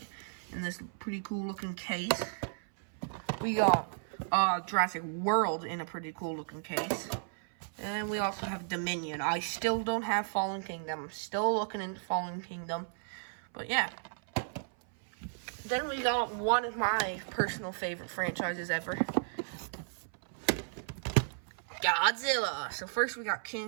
in this pretty cool looking case. We got Jurassic World in a pretty cool looking case. And we also have Dominion. I still don't have Fallen Kingdom. I'm still looking into Fallen Kingdom. But yeah. Then we got one of my personal favorite franchises ever. Godzilla. So first we got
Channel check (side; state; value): left; silent; 55 dB below the other